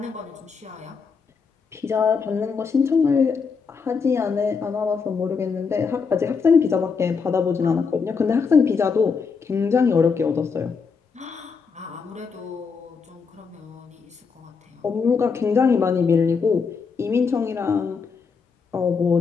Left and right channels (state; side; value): quieter; right; 5.4 dB